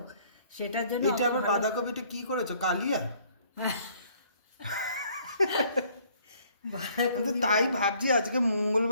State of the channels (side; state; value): both; inverted; correlation -0.61